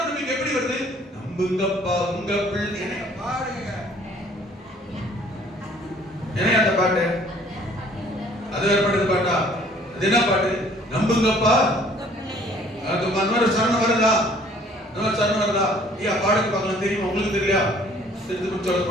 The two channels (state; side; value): normal; both; correlation 0.57